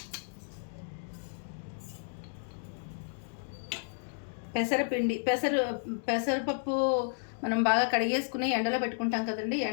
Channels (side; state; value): right; silent; digital silence